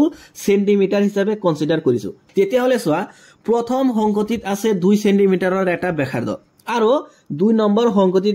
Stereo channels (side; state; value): both; identical; correlation 1.00